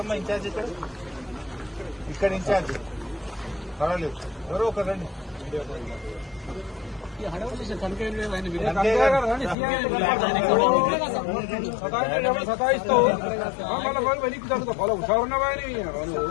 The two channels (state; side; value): drops out; right; at 9.6 s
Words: ఇన్ఛార్జ్? ఇక్కడ ఇన్ఛార్జ్ పర్వాలేదు, ఎవరో ఒకరు రండి.